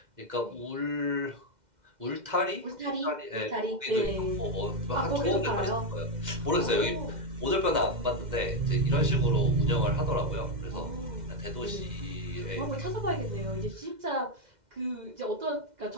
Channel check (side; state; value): left; late; 2.1 ms